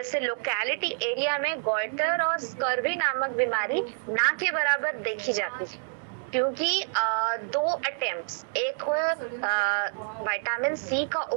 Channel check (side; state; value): left; silent; 60 dB below the other